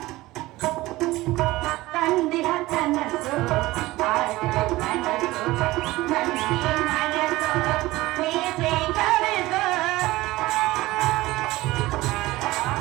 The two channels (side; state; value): left; quieter; 18.6 dB